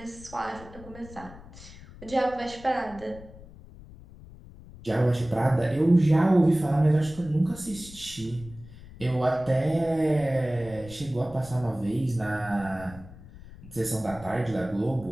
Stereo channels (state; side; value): noise; left; rumble, 18 dB below the sound